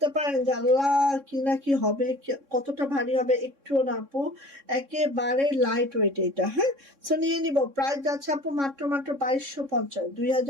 পারেন যে আল্লাহ কি না কি হবে, কতটা ভারী হবে, একটুও না আপু, একেবারে লাইট ওয়েট এটা। হ্যাঁ, সো নিয়ে নিব, প্রাইস যাচ্ছে আপু মাত্র মাত্র 2250,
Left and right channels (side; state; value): left; late; 3.6 ms